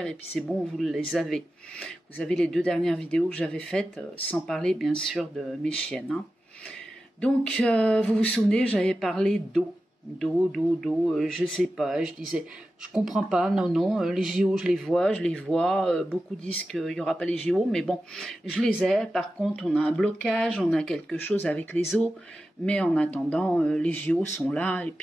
et puis c'est bon, vous les avez. Vous avez les 2 dernières vidéos que j'avais faites, sans parler bien sûr de mes chiennes. Hein. Donc vous vous souvenez, j'avais parlé d'eau. Je sais pas, je disais, je comprends pas, non, les JO je les vois, beaucoup disent qu'il y aura pas les JO, mais bon, je les ai, par contre on a un blocage, on a quelque chose avec les eaux, mais en attendant, les JO sont là, et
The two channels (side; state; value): both; normal; correlation 0.93